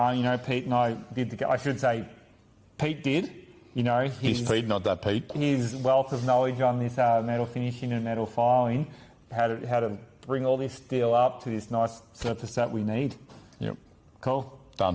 Pete and I did. I should say, Pete did. He's Pete, not that Pete. His wealth of knowledge on this metal finishing and metal filing, how to bring all this steel up to this nice surface that we need. Yep. Cool.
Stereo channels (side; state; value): both; identical; correlation 1.00